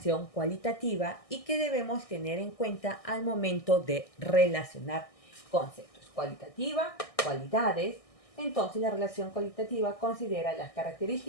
cualitativa y que debemos tener en cuenta al momento de relacionar conceptos. Cualitativa, cualidades. Entonces la relación cualitativa considera las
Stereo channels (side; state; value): right; late; 1.6 ms